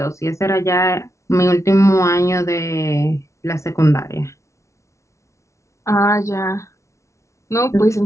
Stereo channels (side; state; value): right; late; 0.14 ms